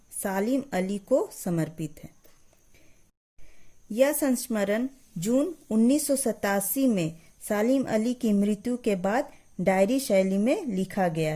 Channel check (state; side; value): identical; both; correlation 1.00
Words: सालिम अली को समर्पित है। यह संस्मरण जून 1987 में सालिम अली की मृत्यु के बाद डायरी शैली में लिखा गया